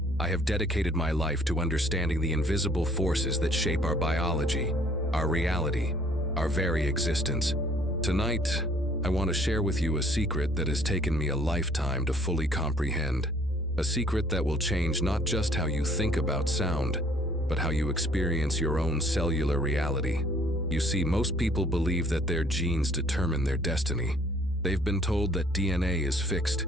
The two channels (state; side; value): normal; both; correlation 0.60